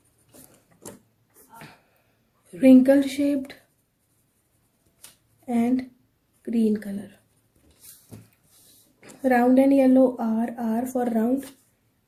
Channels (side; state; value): both; identical; correlation 1.00